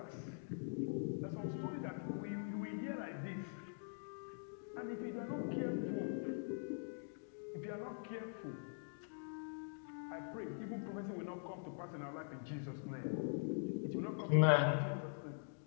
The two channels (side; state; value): right; silent; digital silence